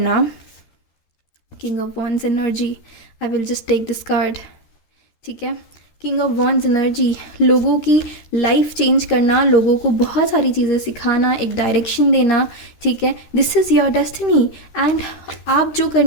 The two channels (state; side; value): late; right; 13 ms